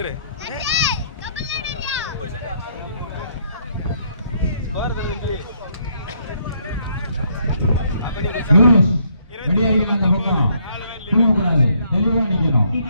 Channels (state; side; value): inverted; both; correlation -0.70